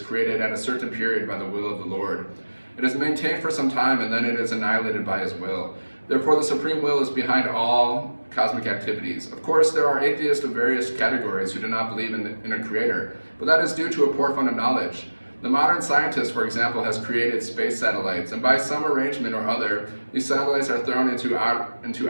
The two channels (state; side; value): inverted; both; correlation -1.00